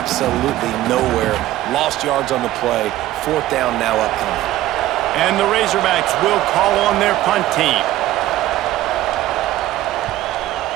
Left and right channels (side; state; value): left; quieter; 14.9 dB